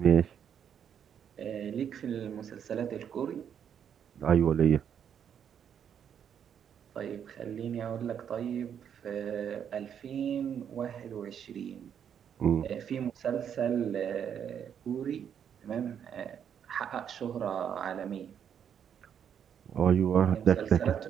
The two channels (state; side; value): quieter; left; 8.4 dB